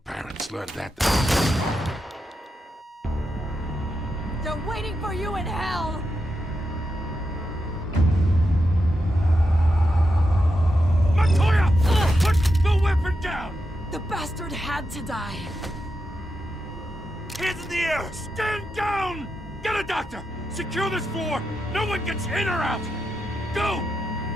learned that. They're waiting for you in hell! Montoya! Put the weapon down! The bastard had to die. Hands in the air! Stand down! Get a doctor! Secure this floor! No one gets in or out! Go!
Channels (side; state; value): both; normal; correlation 0.86